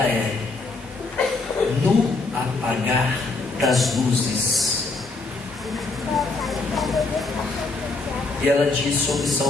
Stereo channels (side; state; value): right; quieter; 3.6 dB